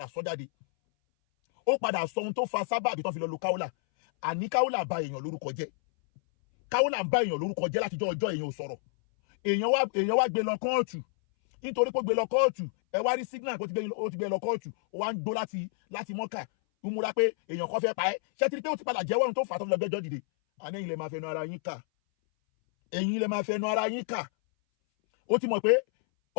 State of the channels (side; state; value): right; silent; 58 dB below the other